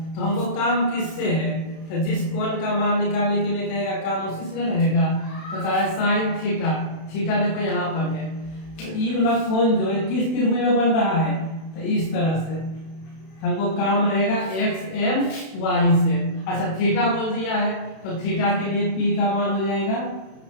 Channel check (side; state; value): right; late; 31 ms